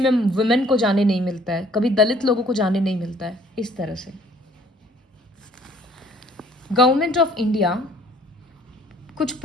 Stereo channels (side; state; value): both; normal; correlation 0.58